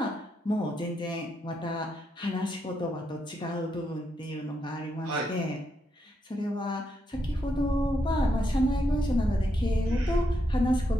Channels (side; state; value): both; normal; correlation 0.81